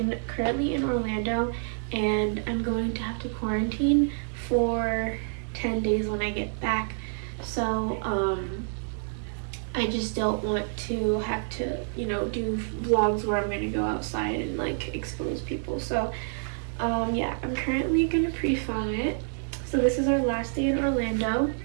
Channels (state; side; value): silent; left; 59 dB below the other